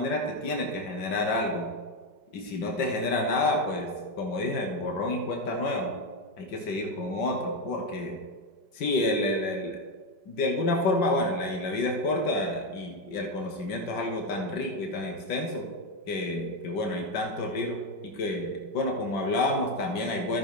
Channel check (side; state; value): right; late; 5.6 ms